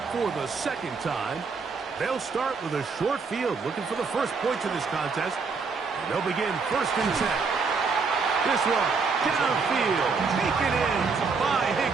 for the 2nd time. They'll start with a short field, looking for the first points of this contest. And they'll begin 1st and 10. This one, downfield, taken in by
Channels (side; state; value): left; quieter; 4.9 dB